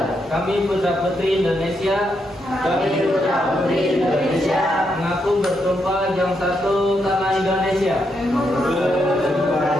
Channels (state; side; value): normal; both; correlation 0.80